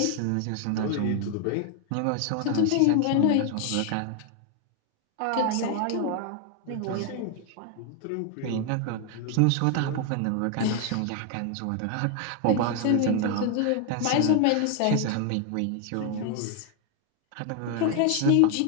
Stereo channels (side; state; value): both; different; correlation 0.01